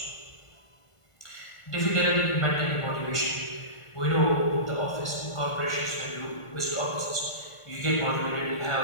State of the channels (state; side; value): late; right; 1.4 ms